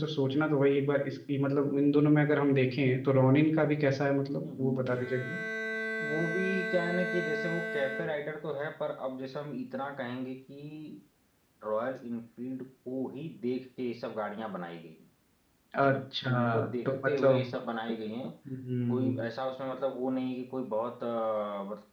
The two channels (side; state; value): both; identical; correlation 1.00